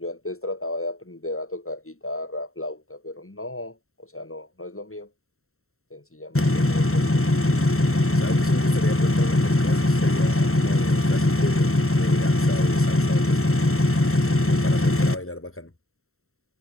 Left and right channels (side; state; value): right; late; 0.63 ms